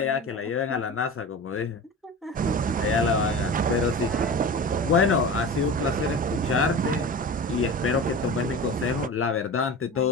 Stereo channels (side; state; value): both; normal; correlation 0.32